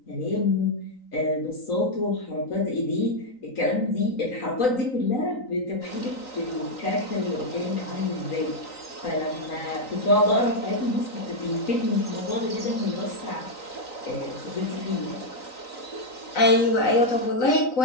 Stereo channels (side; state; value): right; late; 3.9 ms